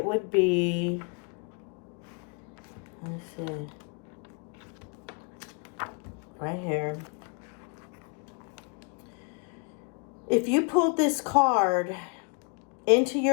would be, let's see, right here. If you pulled this card into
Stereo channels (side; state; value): right; quieter; 35.0 dB